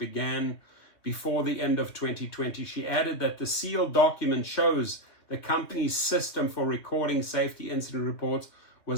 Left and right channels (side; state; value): right; late; 2.6 ms